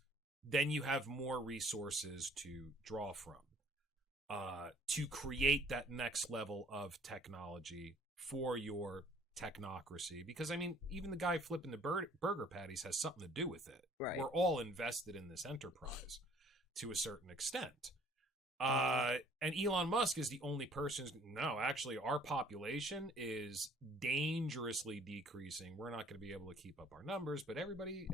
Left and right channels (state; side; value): normal; both; correlation 0.56